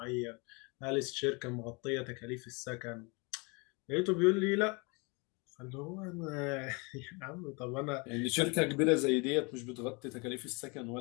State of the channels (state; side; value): quieter; right; 29.9 dB